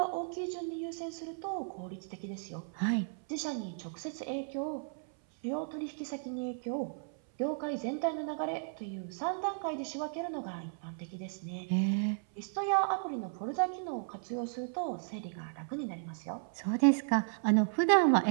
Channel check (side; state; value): left; silent; 55 dB below the other